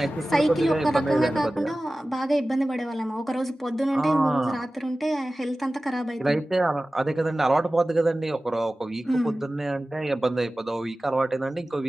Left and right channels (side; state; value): both; normal; correlation 0.96